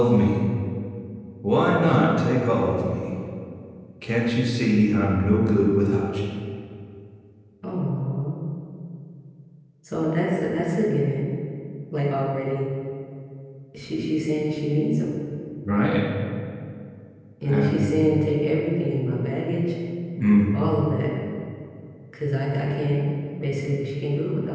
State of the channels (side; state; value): both; identical; correlation 1.00